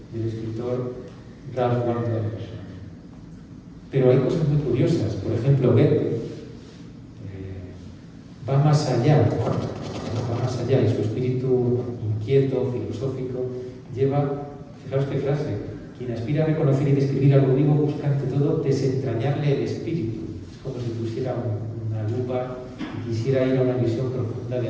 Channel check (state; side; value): identical; both; correlation 1.00